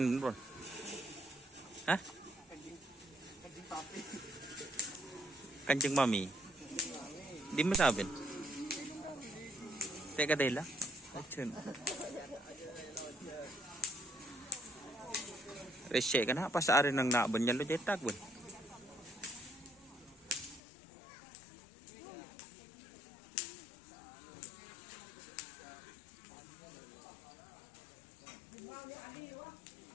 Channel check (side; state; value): right; drops out; at 20.6 s